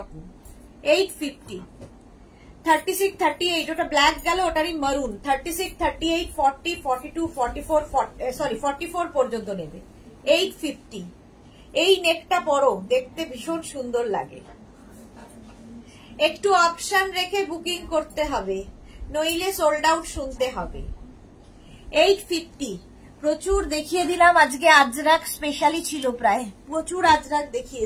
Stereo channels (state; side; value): identical; both; correlation 1.00